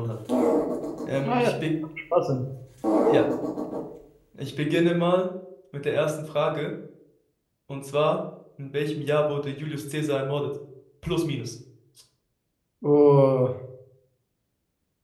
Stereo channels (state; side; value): identical; both; correlation 1.00